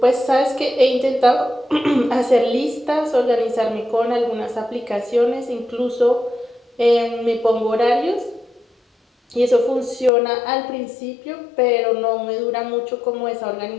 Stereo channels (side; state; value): right; drops out; at 10.1 s